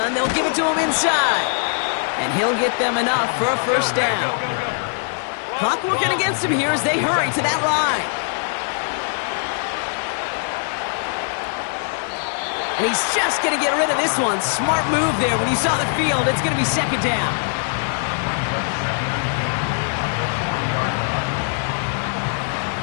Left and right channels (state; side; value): silent; right; 58 dB below the other